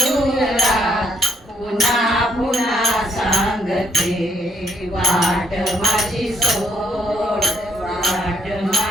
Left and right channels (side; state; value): both; normal; correlation 0.73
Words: पुन्हा पुन्हा सांगते वाट माझी सोड, वाट